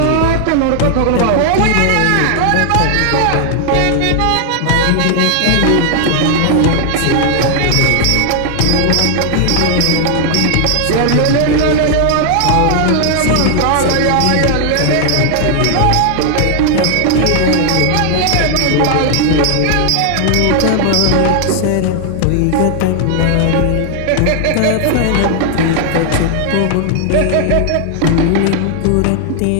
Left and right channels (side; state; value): both; different; correlation 0.00